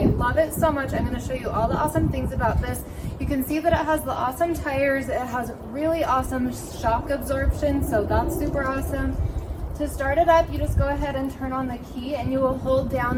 love it so much. I'm going to show you all the awesome things about this. You can see that it has the awesome tires. It has really awesome shock absorption, so that's super awesome. To start it up, you just go ahead and turn on the key and you will hold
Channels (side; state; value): both; identical; correlation 1.00